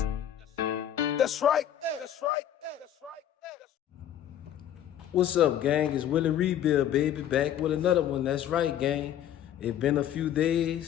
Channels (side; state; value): right; quieter; 10.6 dB